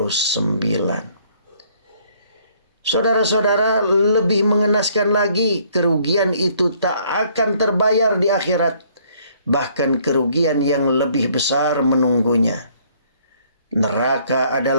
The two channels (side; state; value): both; inverted; correlation -0.63